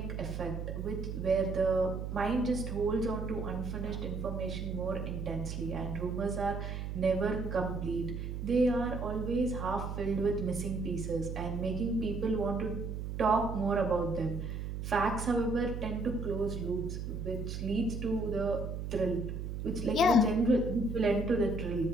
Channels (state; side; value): noise; right; hum, 5 dB below the sound